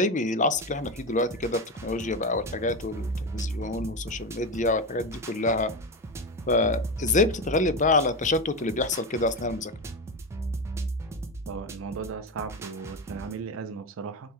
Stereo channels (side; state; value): both; normal; correlation 0.17